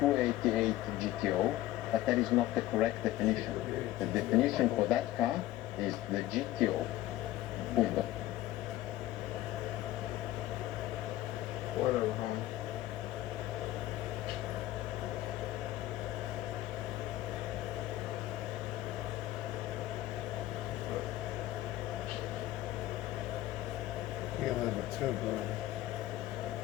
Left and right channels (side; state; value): right; quieter; 15.0 dB